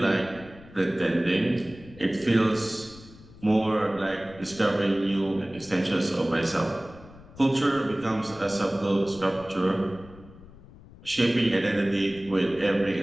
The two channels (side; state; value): left; noise; rumble, 20 dB below the sound